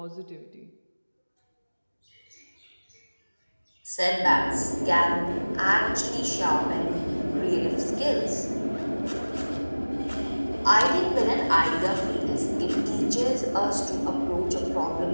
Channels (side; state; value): both; inverted; correlation -1.00